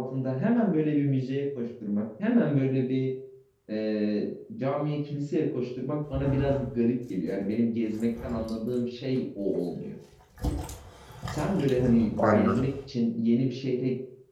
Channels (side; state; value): both; identical; correlation 1.00